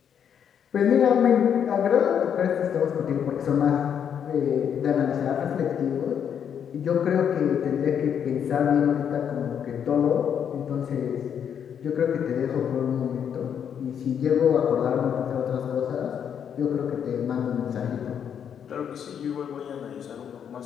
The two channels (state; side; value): quieter; right; 8.3 dB